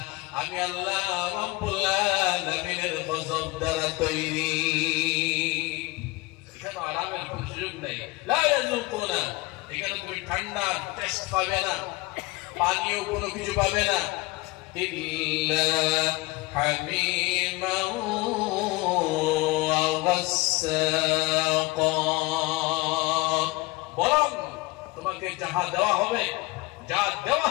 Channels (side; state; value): right; quieter; 22.9 dB